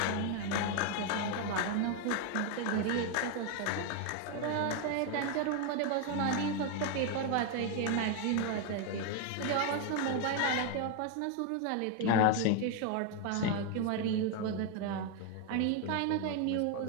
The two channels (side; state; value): both; different; correlation 0.01